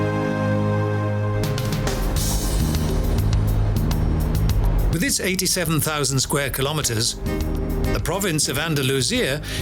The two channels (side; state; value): both; identical; correlation 1.00